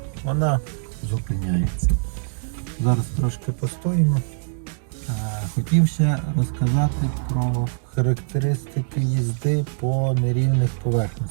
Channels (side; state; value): left; silent; digital silence